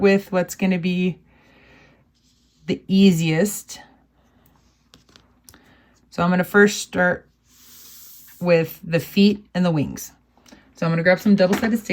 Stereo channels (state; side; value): identical; both; correlation 1.00